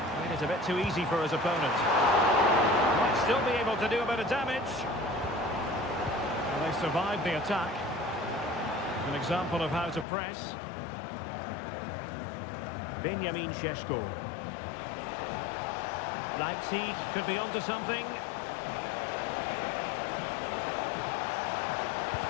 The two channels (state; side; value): drops out; right; at 10.1 s